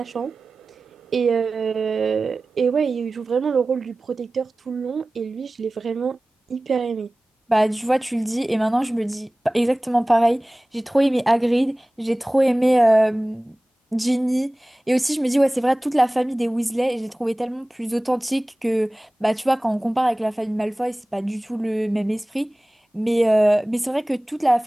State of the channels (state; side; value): normal; both; correlation 0.98